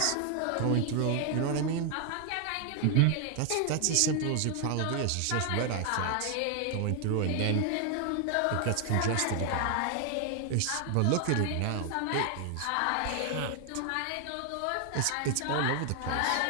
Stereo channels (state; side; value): different; both; correlation 0.00